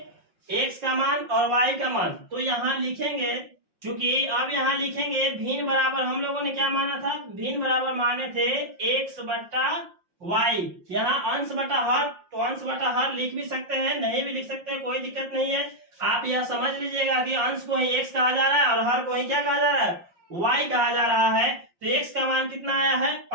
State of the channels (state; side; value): late; left; 5.6 ms